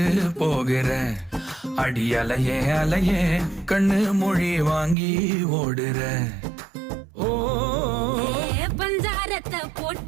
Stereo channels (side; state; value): left; drops out; at 5.0 s